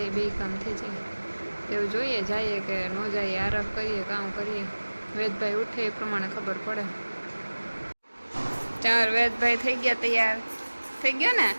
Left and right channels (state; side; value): inverted; both; correlation -1.00